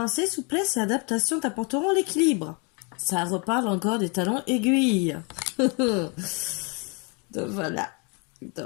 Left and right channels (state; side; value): quieter; right; 33.1 dB